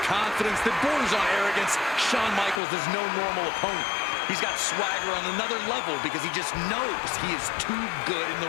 confidence that borders on arrogance, Shawn Michaels is no normal opponent. He's got swagger on another level because he just knows he is too good in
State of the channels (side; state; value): right; drops out; at 2.6 s